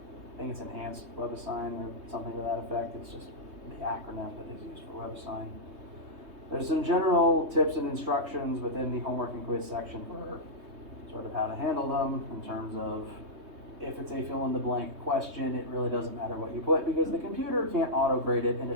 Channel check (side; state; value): left; late; 3.2 ms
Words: I think it's Enhanced WebAssign or something to that effect. It's just the acronym that is used for WebAssign. There's some general tips and instructions within the homework and quiz section for sort of how to handle them in terms of, if it's a fill-in-the-blank question, it really doesn't matter what you put because the computer can't auto-grade it and